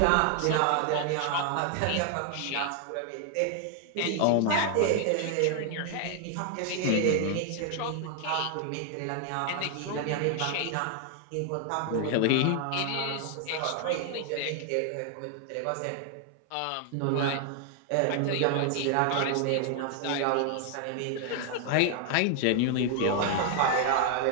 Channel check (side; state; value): both; different; correlation 0.00